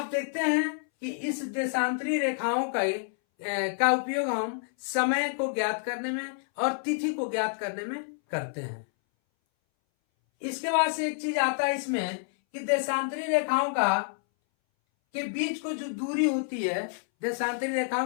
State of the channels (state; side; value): silent; right; 59 dB below the other